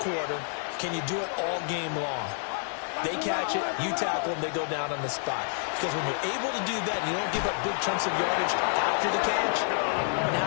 can you do it all game long? They catch it, you tackle them, they go down on the spot. Because when you're able to do that, and you don't give up big chunks of yardage after the catch,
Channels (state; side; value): silent; right; 59 dB below the other